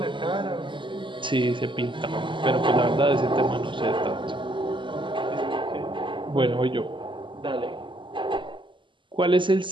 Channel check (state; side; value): late; left; 0.24 ms